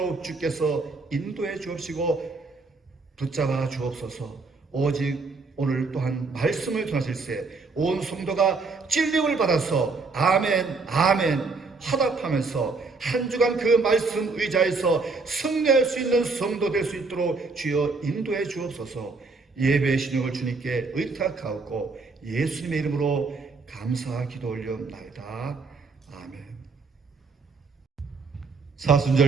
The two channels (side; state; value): left; quieter; 4.1 dB